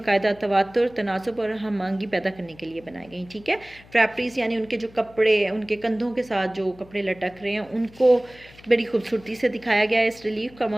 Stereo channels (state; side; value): noise; left; hum, 24 dB below the sound